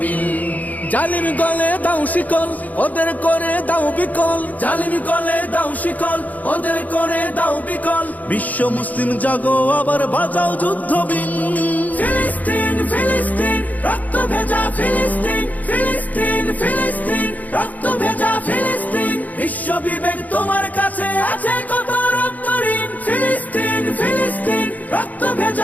জালিম গলে দাও শিকল, ওদের করে দাও বিকল। জালিম গলে দাও শিকল, ওদের করে দাও বিকল। বিশ্ব মুসলিম জাগো আবার বাজাও যুদ্ধ বিন। ফিলিস্তিন ফিলিস্তিন রক্ত ভেজা ফিলিস্তিন, ফিলিস্তিন ফিলিস্তিন রক্ত ভেজা ফিলিস্তিন। বিশ্ব বিবেক তোমার কাছে আছে কত রক্ত ঋণ। ফিলিস্তিন ফিলিস্তিন রক্ত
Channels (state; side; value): late; right; 0.078 ms